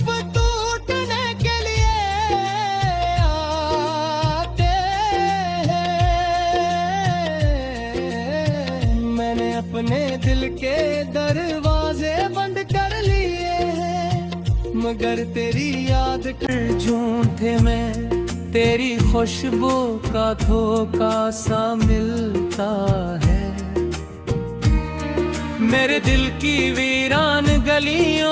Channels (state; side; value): identical; both; correlation 1.00